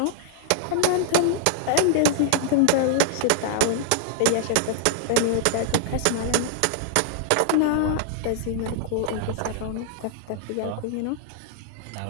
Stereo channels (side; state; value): both; different; correlation 0.00